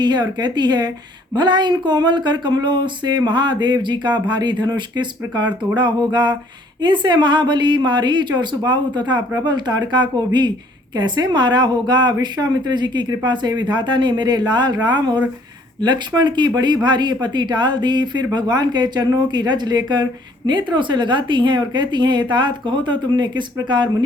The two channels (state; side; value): normal; both; correlation 0.61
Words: है और कहती है, भला इन कोमल कर कमलों से महादेव जी का भारी धनुष किस प्रकार तोड़ा होगा। इनसे महाबली मारीच और सुबाहु तथा प्रबल ताड़का को भी कैसे मारा होगा। विश्वामित्र जी की कृपा से विधाता ने मेरे लाल राम और लक्ष्मण की बड़ी भारी पति टाल दी। फिर भगवान के चरणों की रज लेकर नेत्रों से लगाती हैं और कहती हैं, तात कहो तो तुमने किस प्रकार